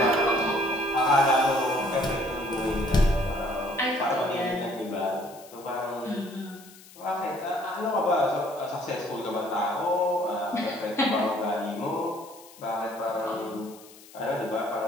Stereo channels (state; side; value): noise; left; hiss, 21 dB below the sound